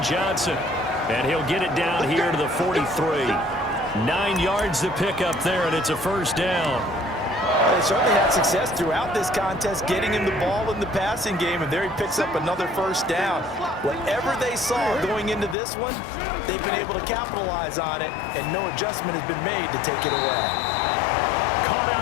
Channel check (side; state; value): right; drops out; at 15.6 s